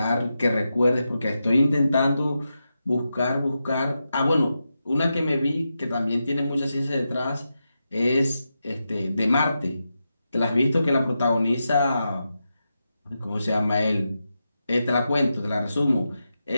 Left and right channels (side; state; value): both; inverted; correlation -0.88